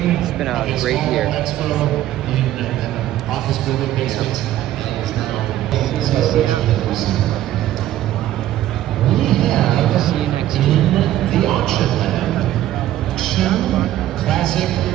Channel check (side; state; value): left; quieter; 13.4 dB